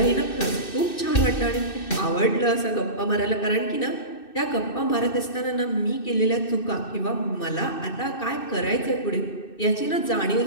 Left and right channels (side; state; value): right; late; 2.6 ms